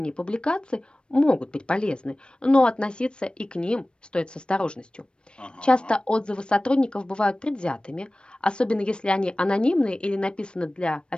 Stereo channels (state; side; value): late; right; 0.055 ms